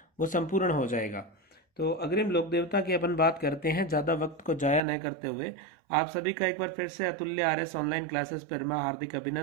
वो संपूर्ण हो जाएगा। तो अग्रिम लोक देवता की अपन बात करते हैं, ज़्यादा वक्त को जाया नहीं करते हुए। आप सभी का एक बार फिर से अतुल्य आरएस ऑनलाइन क्लासेस पर मैं हार्दिक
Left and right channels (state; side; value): drops out; left; at 4.8 s